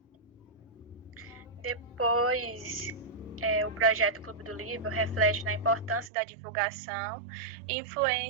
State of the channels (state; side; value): drops out; left; at 6.1 s